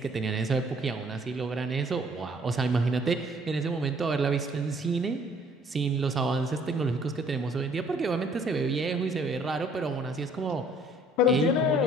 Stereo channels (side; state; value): both; normal; correlation 0.59